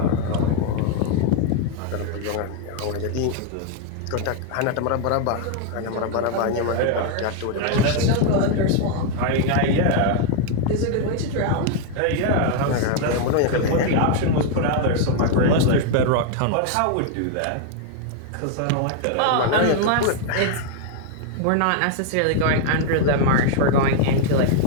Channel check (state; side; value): different; both; correlation 0.00